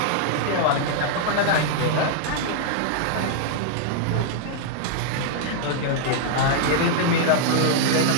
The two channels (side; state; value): both; different; correlation -0.01